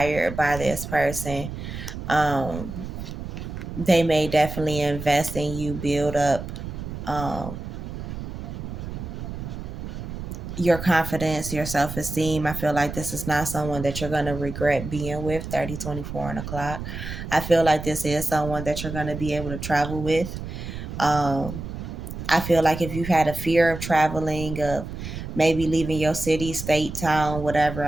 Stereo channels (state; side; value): noise; right; rumble, 8 dB below the sound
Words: by this person. Um, they may definitely invest in you, build up um, your confidence, your self esteem. I feel like this is not someone that you're going to regret being with. 30, 24, and o'clock. I feel like this is someone that you're going to be able to travel with. Um, I feel like if you've had a fear of traveling, of maybe leaving your city, state, town, whatever,